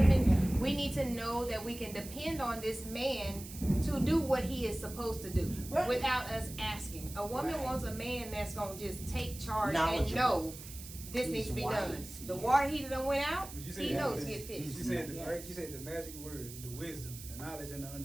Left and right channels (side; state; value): right; noise; hiss, 13 dB below the sound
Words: we need to know that we can depend on this man to do what he is supposed to do Right. without us asking. A woman Right. wants a man that's going to just take charge and Knowledgeable. know this He's needs to be wise, done. The yes. water heater done went out, You said he that knows was- to get You fixed. said the Yes. right. You said the magic word, the wisdom, the knowledge, and the